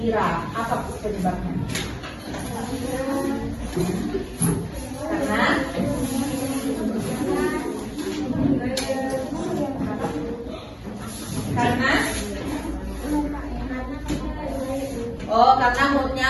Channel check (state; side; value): identical; both; correlation 1.00